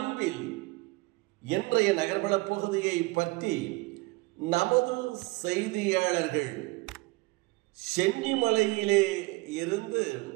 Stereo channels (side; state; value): left; quieter; 23.0 dB